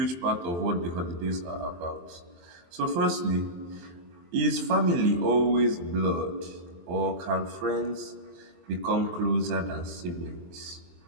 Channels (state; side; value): late; left; 23 ms